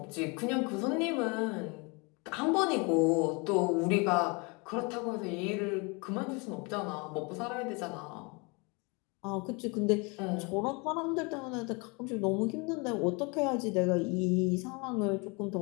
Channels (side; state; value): right; quieter; 29.9 dB